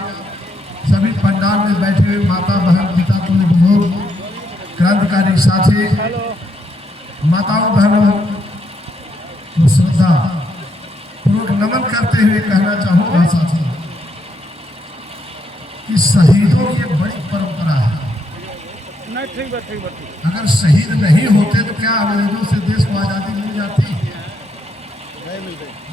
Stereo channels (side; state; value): both; normal; correlation 0.77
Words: सभी पंडाल में बैठे हुए माता बहन पिता तुल्य बुजुर्ग क्रांतिकारी साथी माताओं बहनों को श्रद्धा पूर्वक नमन करते हुए कहना चाहूँगा साथियों कि शहीदों की एक बड़ी परंपरा है। अगर शहीद नहीं होते तो क्या अंग्रेजों से देश को आज़ादी मिल जाती?